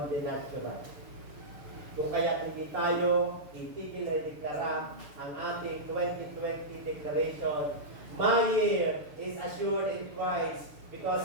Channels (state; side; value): late; left; 6.7 ms